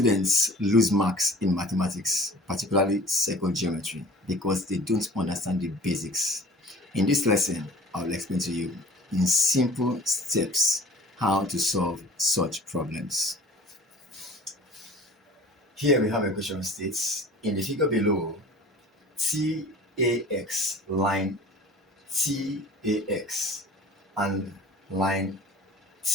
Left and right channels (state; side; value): normal; both; correlation 0.44